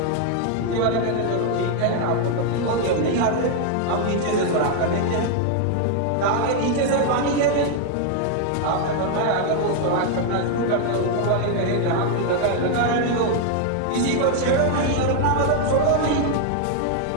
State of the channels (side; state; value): both; different; correlation 0.00